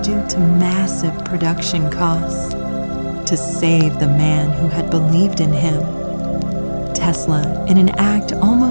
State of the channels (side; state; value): both; inverted; correlation -1.00